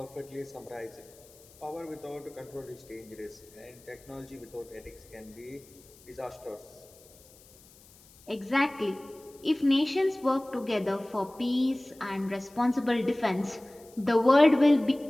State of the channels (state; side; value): noise; left; hiss, 25 dB below the sound